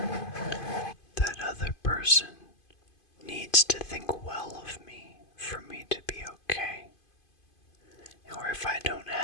that other person needs to think well of me for me to be okay, or if I don't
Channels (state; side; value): late; right; 2.5 ms